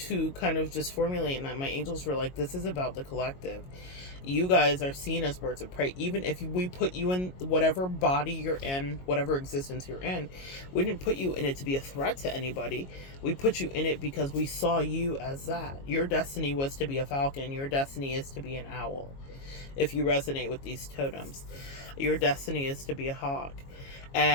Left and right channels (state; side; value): late; right; 22 ms